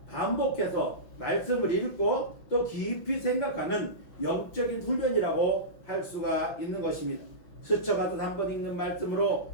반복해서 말씀을 읽고 또 깊이 생각하는 영적인 훈련이라고 할 수가 있는 것입니다. 스쳐가듯 한번 읽는 말씀으로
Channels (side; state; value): right; late; 5.9 ms